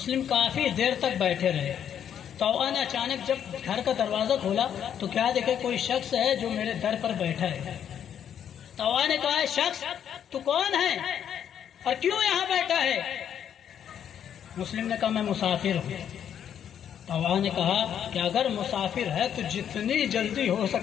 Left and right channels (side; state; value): right; quieter; 9.1 dB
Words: کافی دیر تک بیٹھے رہے۔ طوعہ نے اچانک جب گھر کا دروازہ کھولا تو کیا دیکھے، کوئی شخص ہے جو میرے در پر بیٹھا ہے۔ طوعہ نے کہا، شخص تو کون ہے اور کیوں یہاں بیٹھا ہے؟ مسلم نے کہا، میں مسافر ہوں۔ طوعہ نے کہا کہ اگر مسافر ہے تو جتنی جلدی ہو